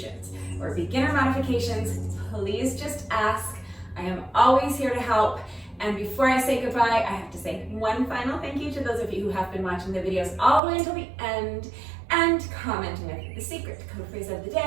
or beginner modifications, please just ask. I am always here to help. And before I say goodbye, I have to say one final thank you to those of you who have been watching the videos all the way until the end and commenting with the secret code phrase of the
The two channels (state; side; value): drops out; left; at 10.6 s